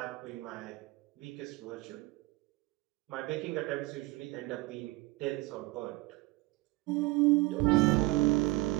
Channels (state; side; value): quieter; left; 21.2 dB